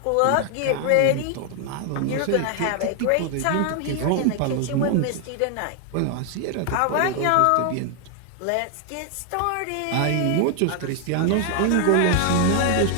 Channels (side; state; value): both; different; correlation 0.00